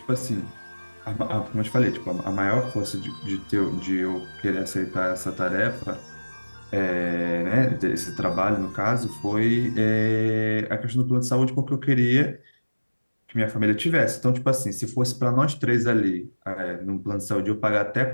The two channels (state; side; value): inverted; both; correlation -1.00